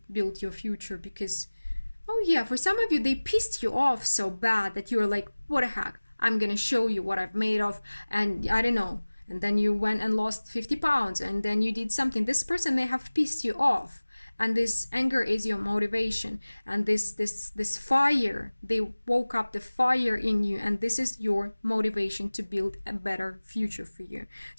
build your future, because Oh yeah, for some of you, they pissed you off so bad that you're like, what the heck? I'm gonna show you what I've made of, and I don't know. And then you went and lost 50 pounds, and then you did something. This person may have pissed you off, and this anger is your motivation, and this fire, they woke up the fire in you, and this is your motivation to build a better future for you.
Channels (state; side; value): inverted; both; correlation -1.00